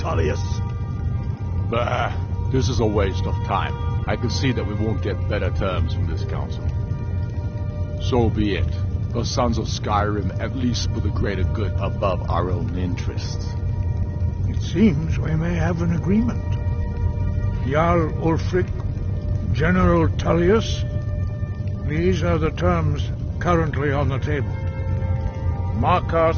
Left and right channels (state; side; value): identical; both; correlation 1.00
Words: Bah, this is a waste of time. I can see that we won't get better terms from this council. So be it. The Sons of Skyrim at least put the greater good above our own interests. It seems we may have an agreement. Jarl Ulfric, General Tullius, these are the terms currently on the table.